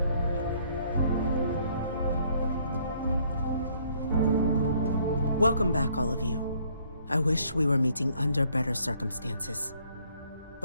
Welcome back, all of you. I wish we were meeting under better circumstances.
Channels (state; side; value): inverted; both; correlation -0.64